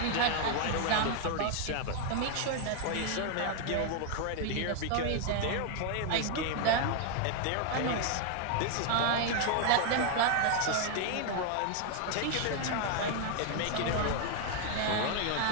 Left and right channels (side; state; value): both; different; correlation 0.00